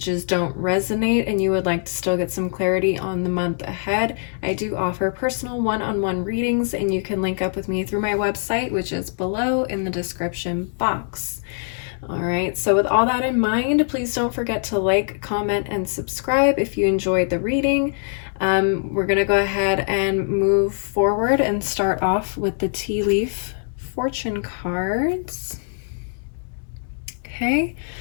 don't resonate and you would like to still get some clarity on the month ahead, I do offer personal one-on-one readings, and you can link up with me through my website, which is below in the description box. All right, so with all that in mind, please don't forget to like, comment, and subscribe if you enjoyed the reading. We're going to go ahead and move forward and start off with the tea leaf fortune cards. Okay,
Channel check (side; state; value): right; silent; digital silence